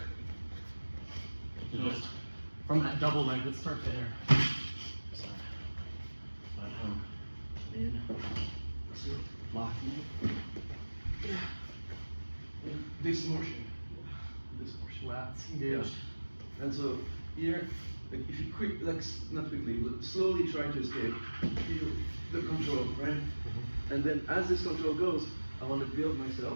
So just from that double leg, let's start there. Sorry. But in, two, locking. This motion. This motion. Lats engaged. Yeah. And so here, like if you not quickly, but slowly try to escape, feel the control, right? And then as this control goes, I want to build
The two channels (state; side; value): inverted; both; correlation -1.00